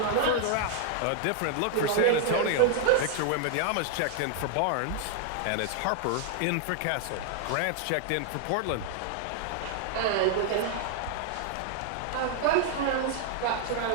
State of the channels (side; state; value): both; different; correlation 0.00